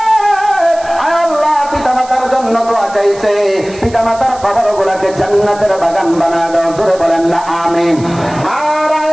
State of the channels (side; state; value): right; noise; hiss, 20 dB below the sound